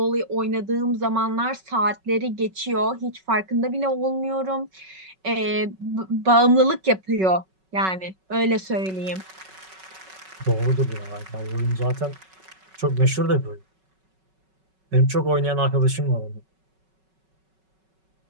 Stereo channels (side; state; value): left; late; 5.3 ms